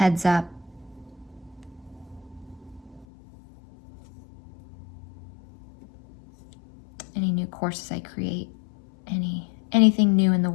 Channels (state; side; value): drops out; right; at 3.1 s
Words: up. Any new courses I create, anything new in the